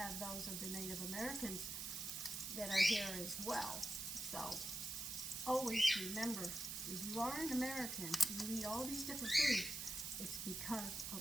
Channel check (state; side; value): noise; right; hiss, 4 dB below the sound